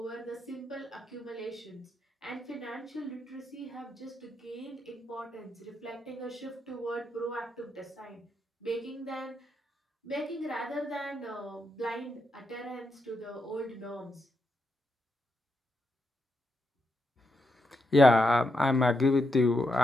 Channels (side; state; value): both; normal; correlation 0.83